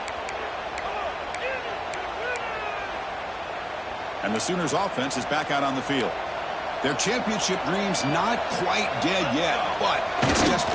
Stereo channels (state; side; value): identical; both; correlation 1.00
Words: And the Sooners offense is back out on the field. Their championship dreams not quite dead yet, but it's